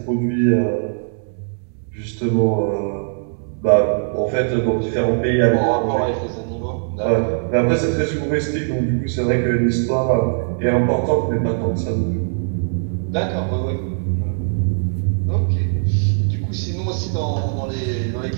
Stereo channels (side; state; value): left; silent; digital silence